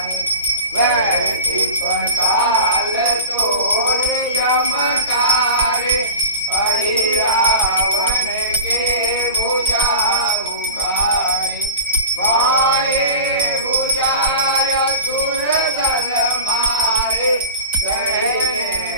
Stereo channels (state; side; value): inverted; both; correlation -0.34